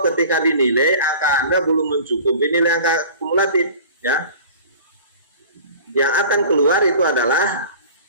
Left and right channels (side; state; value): both; inverted; correlation -0.42